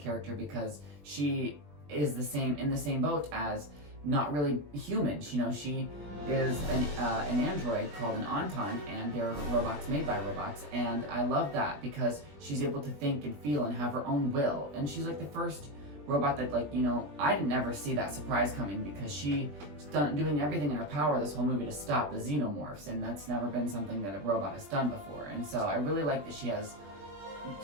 because she is in the same boat as not really human. You know, she is an android called an Auton, and they're robots made by robots, and I love that because she's able to think and feel and have her own will, and she's like the first robot that, like, you know, I didn't ever see that surprise coming, because she's doing everything in her power this whole movie to stop the Xenomorphs, and that's never been something that a robot has done before. And so I really like that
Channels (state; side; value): late; left; 20 ms